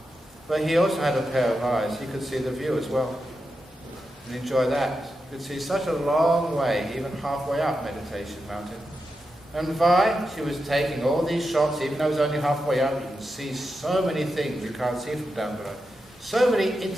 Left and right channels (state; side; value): normal; both; correlation 0.88